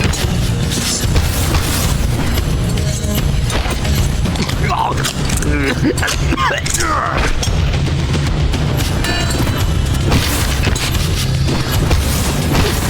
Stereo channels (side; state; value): both; identical; correlation 1.00